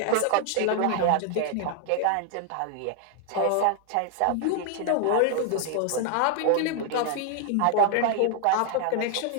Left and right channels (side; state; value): both; different; correlation 0.00